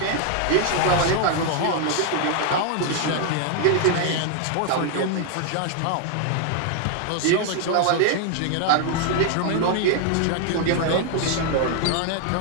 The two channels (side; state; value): both; different; correlation 0.00